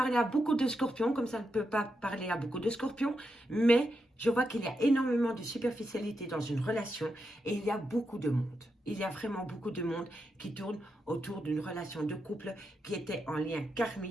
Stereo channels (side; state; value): both; normal; correlation 0.85